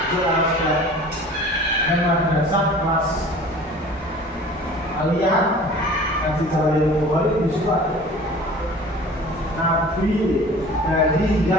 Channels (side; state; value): both; normal; correlation 0.44